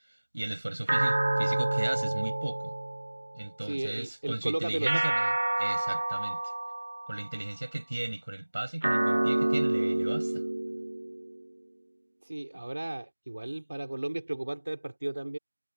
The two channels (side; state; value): both; inverted; correlation -1.00